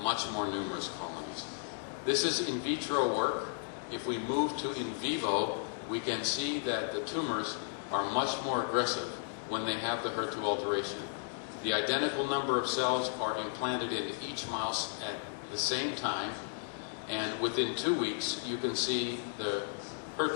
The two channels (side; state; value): right; silent; digital silence